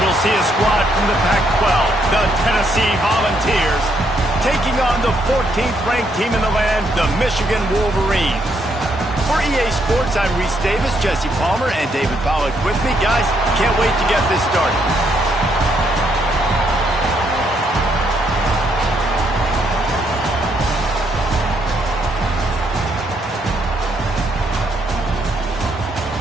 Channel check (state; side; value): normal; both; correlation 0.74